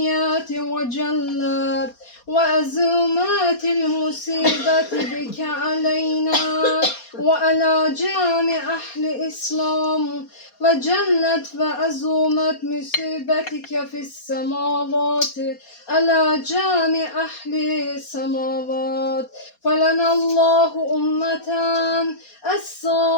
وجلت وأزومات المصيبة بك علينا وعلى جامع أهل الإسلام وجلت وأزومت مصيبتك في السماوات على جامع أهل السماوات فلنا الله أمة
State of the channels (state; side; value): late; right; 4.2 ms